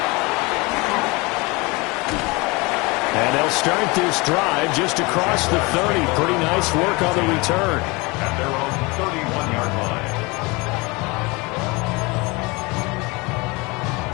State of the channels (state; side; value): quieter; right; 25.7 dB